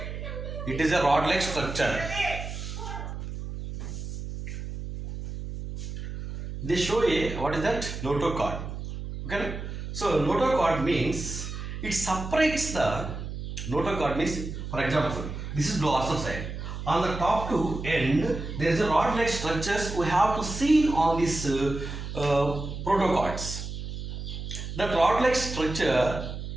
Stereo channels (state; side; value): noise; right; hum, 7 dB below the sound